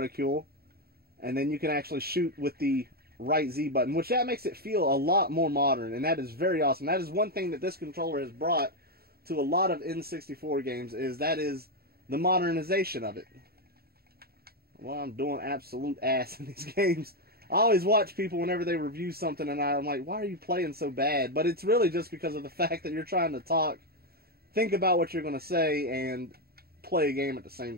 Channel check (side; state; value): left; late; 0.45 ms